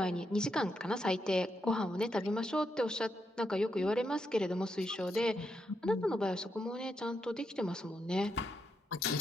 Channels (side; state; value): both; normal; correlation 0.82